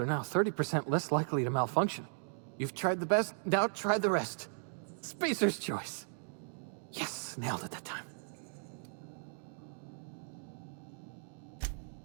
are now 30% less likely to malfunction. You've tried the best, now try the rest. Spacer's choice. Yes, nailed it that time.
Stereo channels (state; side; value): silent; left; digital silence